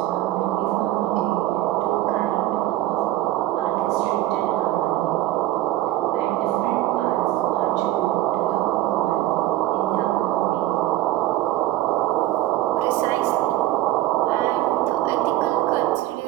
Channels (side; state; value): left; quieter; 15.4 dB